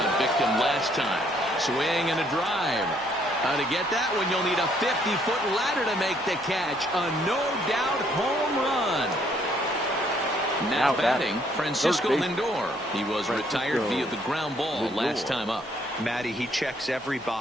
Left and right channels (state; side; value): noise; left; hum, 28 dB below the sound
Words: victim last time. Swing and a drive. To get that one, you'll need a 50-foot ladder to make the catch. A no-doubt home run. Now batting, Francisco Third base. Lindor. He was retired via the ground ball Lindor. last time up. Matty, he checks every